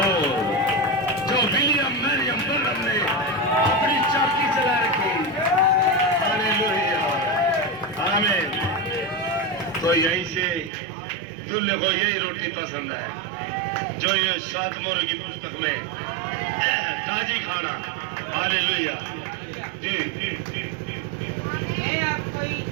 जो विलियम मैरियम बर्नम ने अपनी चाकी चला रखी। हालेलुया, आमीन। तो यहीं से दूल्हे को यही रोटी पसंद है जो ये 7 मोहर की पुस्तक में ताजी खाना। हालेलुया जी, मैं आपकी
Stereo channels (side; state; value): left; drops out; at 10.7 s